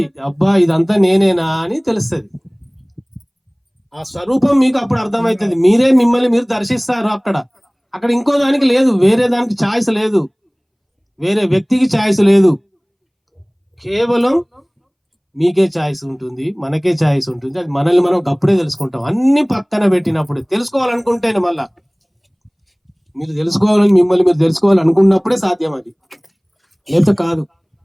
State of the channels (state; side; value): identical; both; correlation 1.00